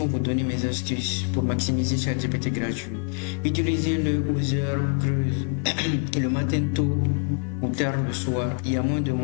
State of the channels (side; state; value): right; quieter; 38.6 dB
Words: vous donner mes astuces pour maximiser ChatGPT gratuit. Utilisez-le aux heures creuses, le matin tôt ou tard le soir. Il y a moins de